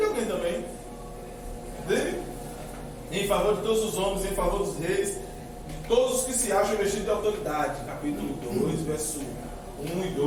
alguém também. Entende? Em favor de todos os homens, em favor dos reis, de todos os que se acham vestidos de autoridade. Capítulo 2, verso 1 e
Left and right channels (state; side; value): identical; both; correlation 1.00